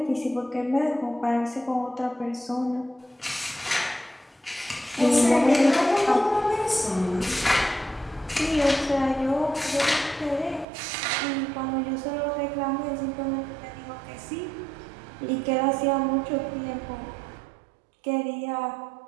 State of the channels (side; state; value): left; drops out; at 10.7 s